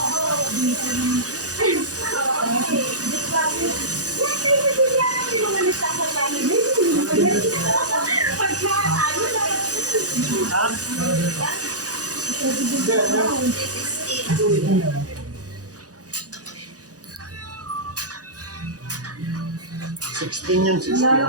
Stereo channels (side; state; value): left; late; 0.67 ms